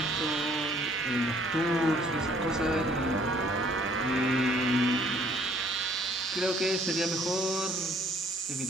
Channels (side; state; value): both; normal; correlation 0.60